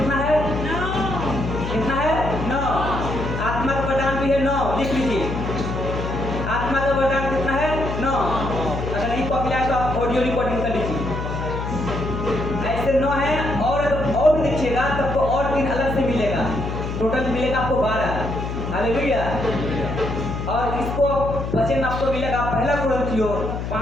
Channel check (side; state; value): left; noise; hum, 4 dB below the sound